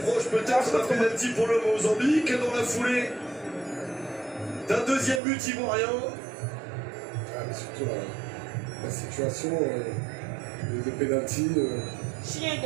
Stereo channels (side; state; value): left; drops out; at 5.2 s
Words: peut-être d'un penalty pour le Mozambique dans la foulée d'un deuxième but ivoirien. Ah, mais surtout la situation de penalty. Chien